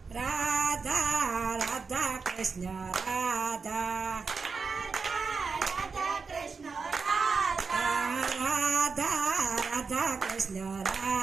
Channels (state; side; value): quieter; left; 4.9 dB